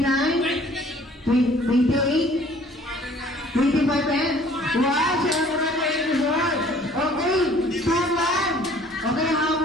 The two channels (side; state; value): both; normal; correlation 0.55